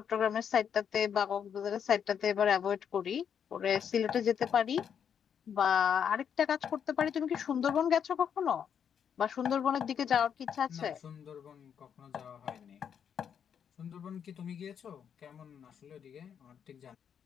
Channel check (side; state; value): right; quieter; 8.0 dB